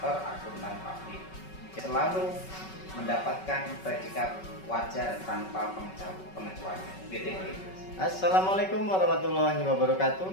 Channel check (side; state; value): right; late; 5.3 ms